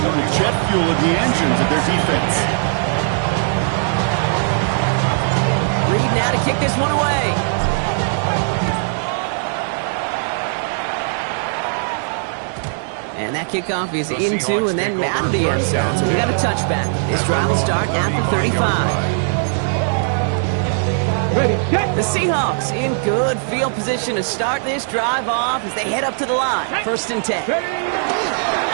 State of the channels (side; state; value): left; silent; digital silence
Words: little jet fuel in the engines of their defense. Reed now to kick this one away. And that kickoff is into and then out of the end zone. So we got a touchback. This drive will start at the 35. The Seahawks in good field position to start this drive off as they head up to the line. First and 10.